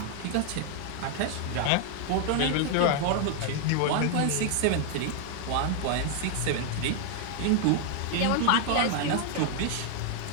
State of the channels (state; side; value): different; both; correlation 0.00